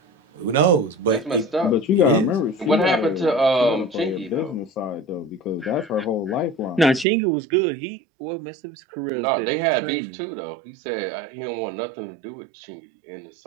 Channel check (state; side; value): drops out; left; at 7.1 s